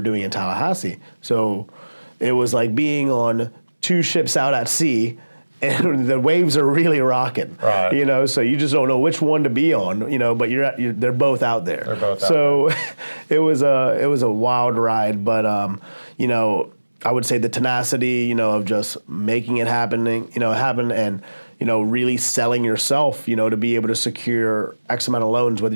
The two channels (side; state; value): both; inverted; correlation -1.00